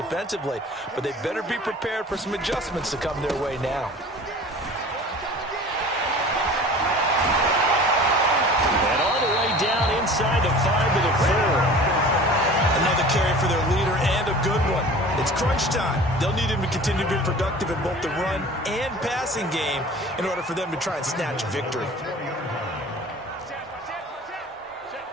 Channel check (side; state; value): both; normal; correlation 0.42